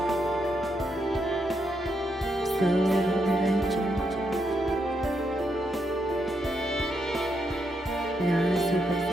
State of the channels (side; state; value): both; normal; correlation 0.80